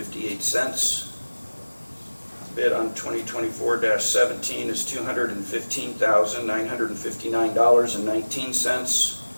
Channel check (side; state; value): both; inverted; correlation -1.00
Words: Bid on 2024-17 is $215,959.19.